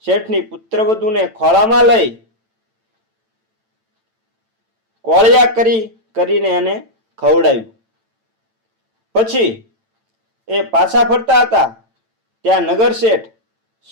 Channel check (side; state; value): left; late; 9.0 ms